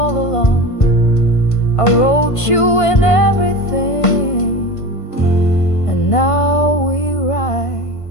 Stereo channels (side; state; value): right; late; 1.5 ms